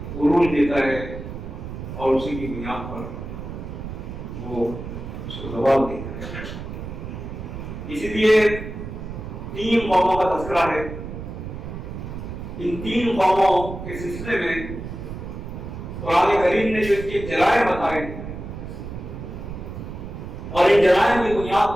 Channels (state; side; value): noise; right; rumble, 9 dB below the sound